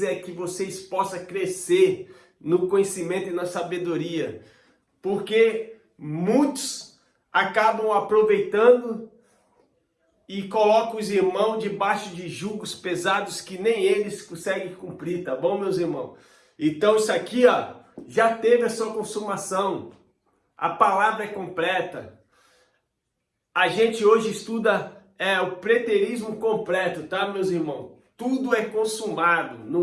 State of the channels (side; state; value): both; identical; correlation 1.00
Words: é que vocês possam crescer no conhecimento e na sabedoria, porque muitos acabam aproveitando e colocam os irmãos debaixo de julgos pesados que nem eles conseguem cumprir, tá bom, meus irmãos? Então isso aqui, já teve a sua consumação, a palavra é completa. A gente hoje estuda o preterismo completo, tá, meus irmãos? Tudo é consumado.